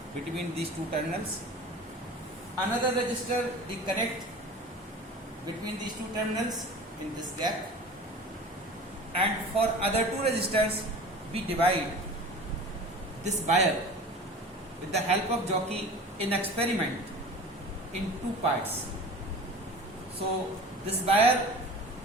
between these 2 terminals. Another register we connect between these 2 terminals in this gap. And for other 2 resistors, we divide this wire with the help of jockey in experiment in 2 parts. So this wire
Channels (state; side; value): normal; both; correlation 0.39